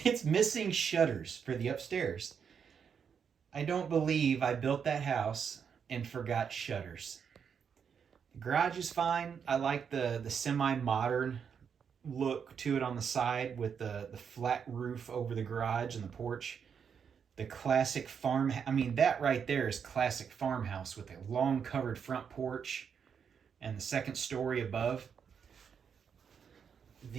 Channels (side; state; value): left; quieter; 7.0 dB